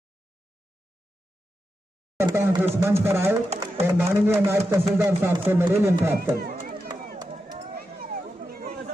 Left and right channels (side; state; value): both; normal; correlation 0.88